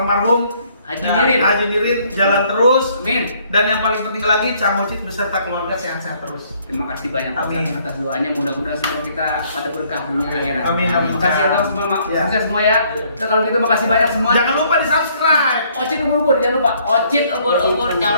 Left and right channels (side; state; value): both; inverted; correlation -0.65